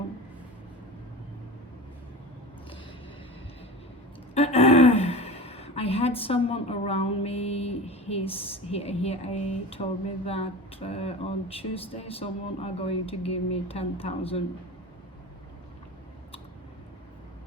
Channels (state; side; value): normal; both; correlation 0.31